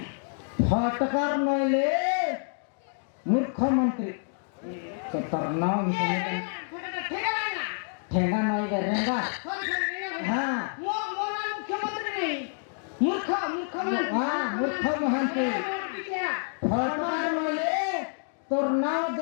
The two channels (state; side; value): silent; right; 59 dB below the other